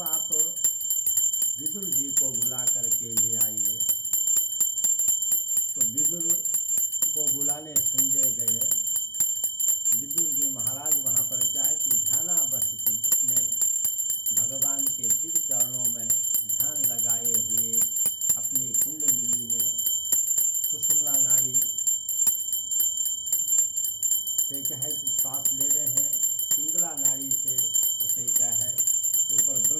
आप विदुर जी को बुला करके ले आइए। तो विदुर को बुलाने संजय गए। विदुर जी महाराज वहाँ पर क्या है कि ध्यानावस्थित अपने भगवान के शिव चरणों में ध्यान लगाए हुए अपनी कुंडलिनी में सुषुम्ना नाड़ी से क्या है कि श्वास ले रहे हैं, पिंगला नाड़ी से उसे क्या है कि ऊपर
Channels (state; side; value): late; right; 0.14 ms